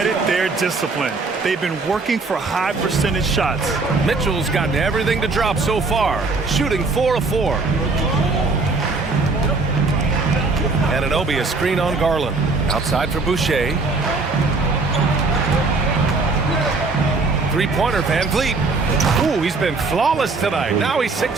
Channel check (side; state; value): left; quieter; 3.8 dB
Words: their discipline. They've been working for high percentage shots. Mitchell's gotten everything to drop so far, shooting 4 of 4. Anunoby, a screen on Garland. Outside for Boucher. 3-pointer, Van Vliet. Ooh, he's been flawless tonight. Now he's